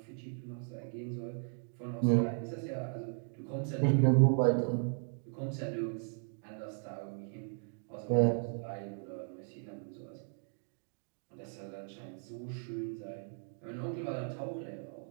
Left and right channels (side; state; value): left; silent; 53 dB below the other